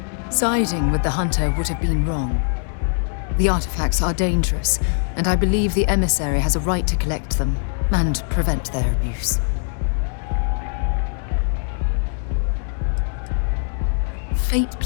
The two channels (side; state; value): right; silent; 64 dB below the other